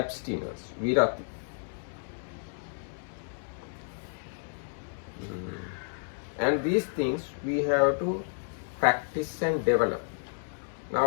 virati. And these things we have to practice and develop.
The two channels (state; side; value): silent; right; digital silence